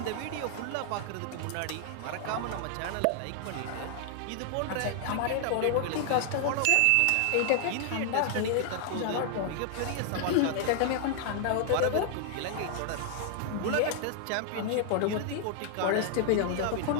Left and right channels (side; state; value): both; different; correlation 0.00